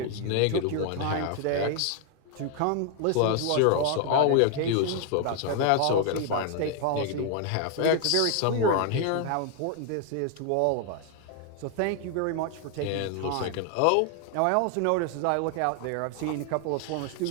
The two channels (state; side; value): different; both; correlation 0.00